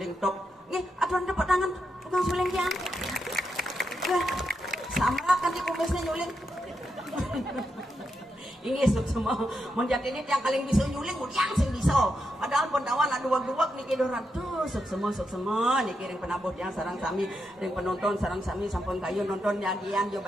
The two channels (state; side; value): normal; both; correlation 0.84